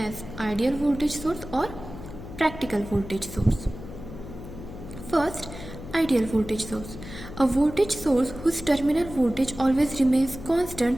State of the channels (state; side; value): noise; left; hum, 12 dB below the sound